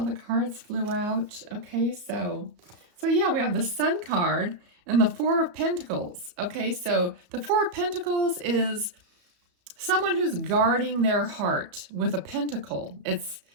the cards flew out. Okay, so yeah, we have the Sun card and the 4 of Pentacles. Okay, so the 4 of Pentacles is someone who's guarding their heart with a pentacle. It's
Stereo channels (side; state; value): left; late; 34 ms